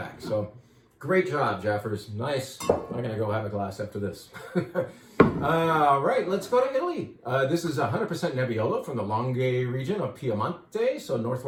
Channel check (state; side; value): identical; both; correlation 1.00